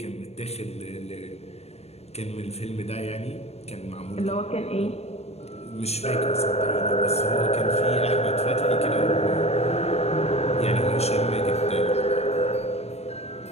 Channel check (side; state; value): right; late; 0.31 ms